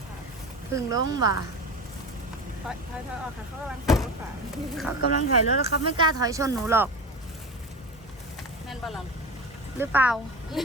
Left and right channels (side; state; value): both; normal; correlation 0.27